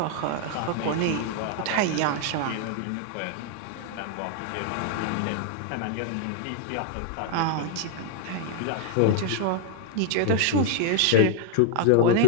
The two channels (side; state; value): both; different; correlation 0.00